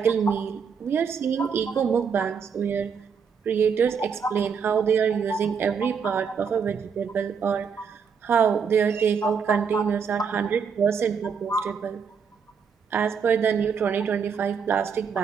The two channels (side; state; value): left; quieter; 6.3 dB